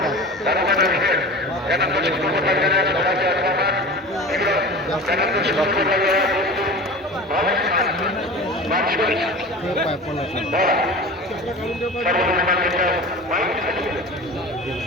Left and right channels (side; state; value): both; normal; correlation 0.35